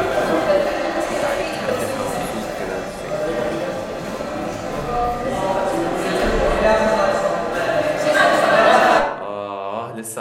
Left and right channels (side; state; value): both; identical; correlation 1.00